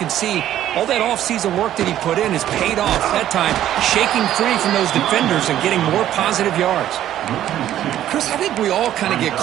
see all that offseason work that he put in has paid off. That time, shaking free from those defenders and getting more positive yards. Chris, I think we all kind of get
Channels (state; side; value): quieter; left; 12.0 dB